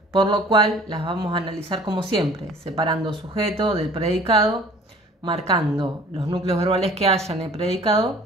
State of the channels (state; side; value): normal; both; correlation 0.49